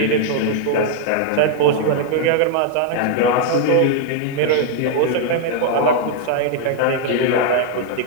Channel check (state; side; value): different; both; correlation 0.00